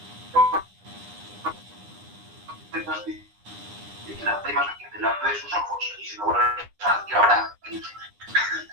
la imagen delante de sus ojos y se lo vuelve a pensar que ahora, qué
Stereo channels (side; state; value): left; late; 9.8 ms